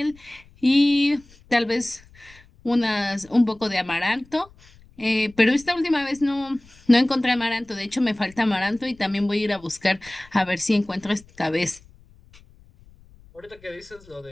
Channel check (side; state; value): left; noise; rumble, 26 dB below the sound